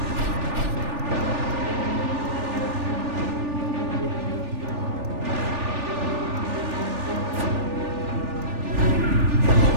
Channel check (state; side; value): late; left; 3.4 ms